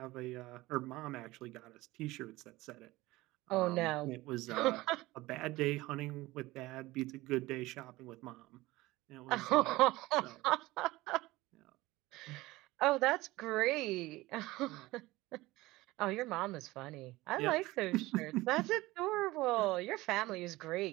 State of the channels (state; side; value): quieter; left; 19.2 dB